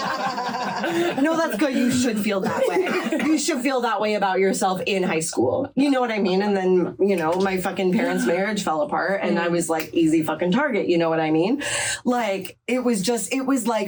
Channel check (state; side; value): identical; both; correlation 1.00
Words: that's good. You should feel that way. You should feel that way about yourself in high school. You know what I mean? And then, you know, my fucking parents' marriage fell apart and I was like easy fucking target. You know what I mean? Like, it was like